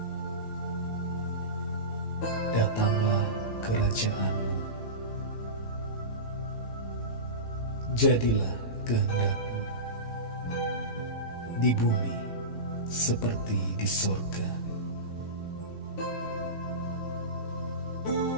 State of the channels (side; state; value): right; late; 18 ms